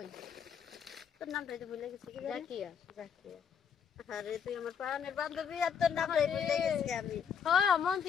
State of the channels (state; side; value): quieter; right; 7.4 dB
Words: তোর নামটাই তো ভুলে গেছি। জাকিয়া। আরে তুই আমার প্রাণের বান্ধবী আর তোর নামটাই ভুলে গেছি আমি। হ্যাঁ